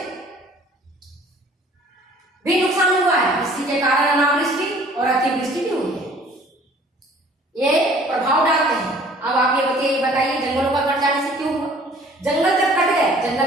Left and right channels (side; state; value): both; normal; correlation 0.53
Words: भी नुकसान हुआ है। इसके के कारण अनावृष्टि और अतिवृष्टि भी हुई है। ये प्रभाव डालते हैं। अब आप ये बताइए जंगलों का कट जाने से क्यों हुआ? जंगल जब कट गए,